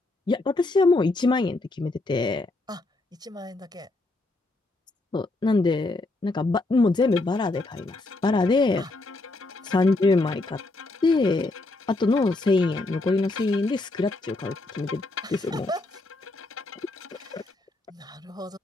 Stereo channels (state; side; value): quieter; right; 3.0 dB